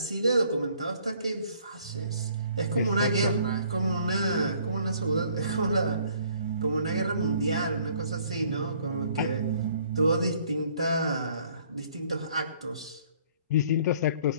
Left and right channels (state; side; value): inverted; both; correlation -0.60